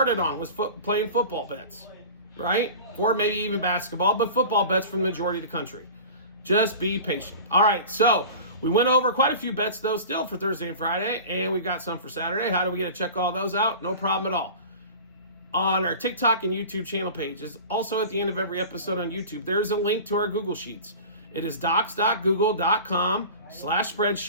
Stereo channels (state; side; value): inverted; both; correlation -0.36